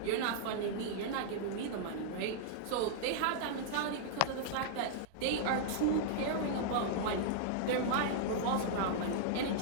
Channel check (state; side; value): different; both; correlation -0.01